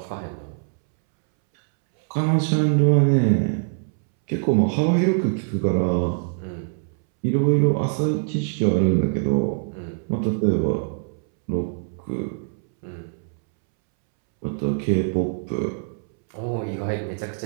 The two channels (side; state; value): left; silent; 63 dB below the other